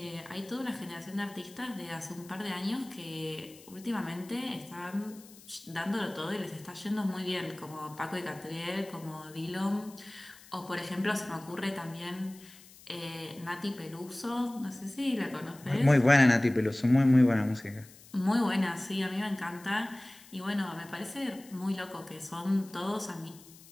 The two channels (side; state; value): left; noise; hiss, 21 dB below the sound